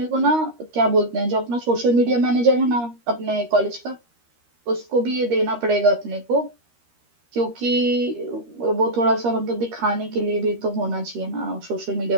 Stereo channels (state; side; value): late; left; 13 ms